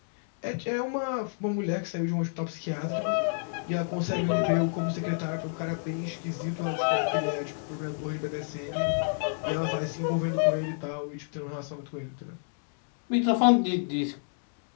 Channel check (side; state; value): right; silent; digital silence